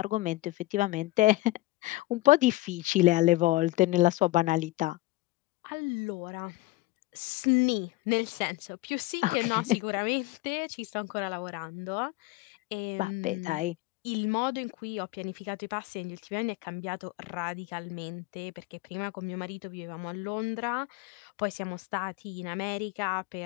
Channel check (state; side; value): quieter; right; 19.5 dB